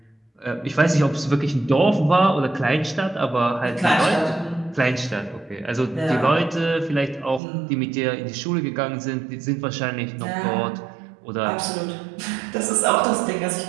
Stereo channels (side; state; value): left; drops out; at 7.4 s